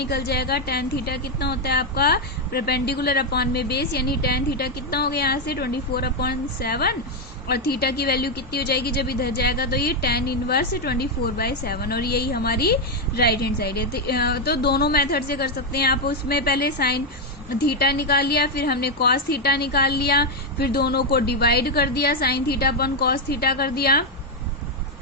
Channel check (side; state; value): both; normal; correlation 0.03